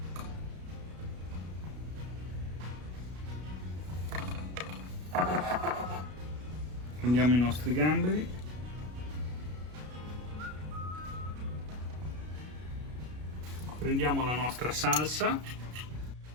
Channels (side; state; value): left; late; 33 ms